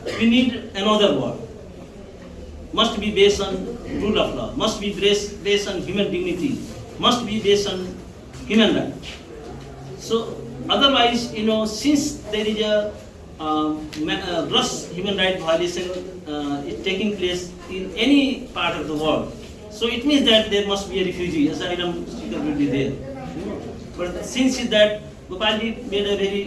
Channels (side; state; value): both; identical; correlation 1.00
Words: we need another world. Must be based on rule of law, must be based on human dignity, must be based on human rights. So otherwise, since there is a gross human rights violation is taking place in any part of the world, so it means that there must be a refugee, asylum seeker will be there. But since that, Gopalji made a